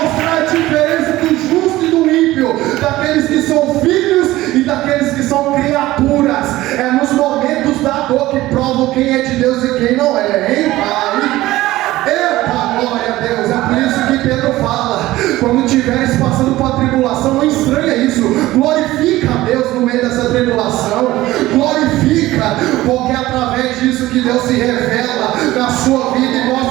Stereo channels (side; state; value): left; quieter; 16.9 dB